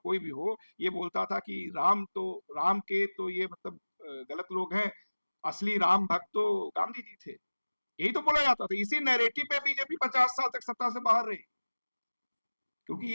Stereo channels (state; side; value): inverted; both; correlation -1.00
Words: भी हो, ये बोलता था कि राम के तो ये मतलब गलत लोग हैं, असली राम भक्त तो गांधी जी थे। यही तो बोला जाता था। इसी नैरेटिव पे बीजेपी 50 साल तक सत्ता से बाहर रही, क्योंकि